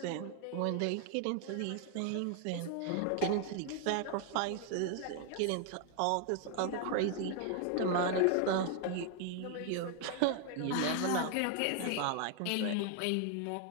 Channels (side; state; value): both; different; correlation 0.00